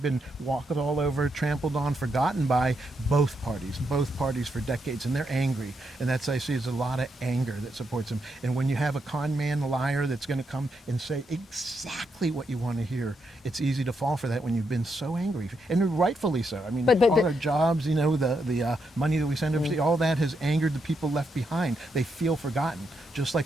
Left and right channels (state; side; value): normal; both; correlation 0.81